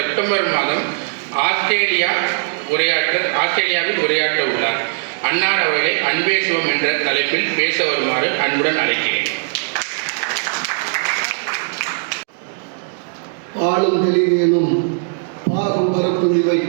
மாதம் ஆஸ்திரேலியாவில் உரையாற்ற உள்ளார். அன்னார் அவர்களை அன்பே சிவம் என்ற தலைப்பில் பேச வருமாறு அன்புடன் அழைக்கிறேன். பாலும் தெளிவேனும் பாகும் பரப்புரிவை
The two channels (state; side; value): silent; left; digital silence